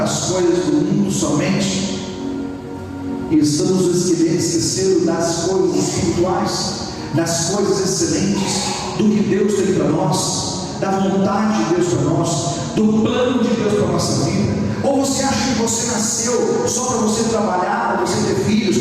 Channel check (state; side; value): identical; both; correlation 1.00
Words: as coisas do mundo somente? E estamos esquecendo das coisas espirituais, das coisas excelentes, do que Deus tem para nós, da vontade de Deus para nós, do plano de Deus para a nossa vida. Ou você acha que você nasceu só para você trabalhar, para você ter filhos,